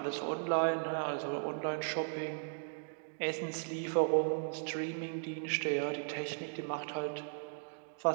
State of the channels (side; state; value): left; silent; digital silence